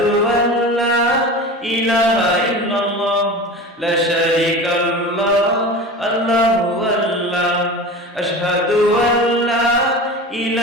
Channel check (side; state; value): both; normal; correlation 0.32